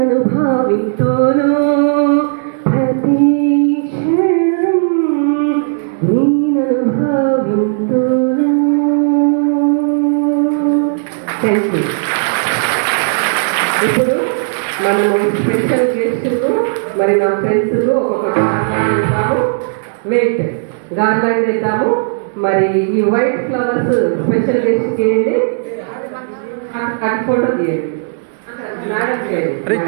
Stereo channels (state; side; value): silent; left; digital silence